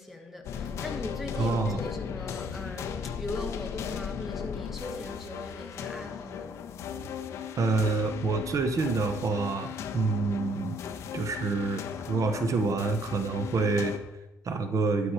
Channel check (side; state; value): both; normal; correlation 0.65